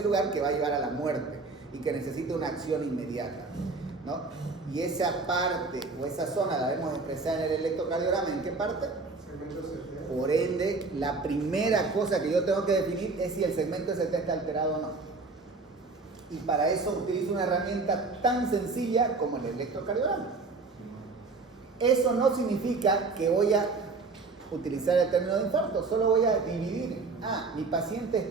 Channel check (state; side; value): quieter; left; 4.0 dB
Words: lugar que va a llevar a la muerte y que necesita una acción inmediata, ¿no? Y esa parte o esa zona la vemos expresada en el electrocardiograma. ¿En qué parte? Por ende, la primera cosa que yo tengo que definir es si el segmento ST está alterado o no. Y para eso utilizo una herramienta tan sencilla como el electrocardiograma. Eso no significa que voy a utilizar el término de infarto, solo voy a dividir. Mi paciente